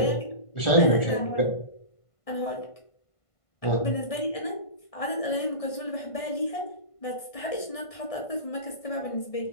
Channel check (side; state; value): right; late; 1.6 ms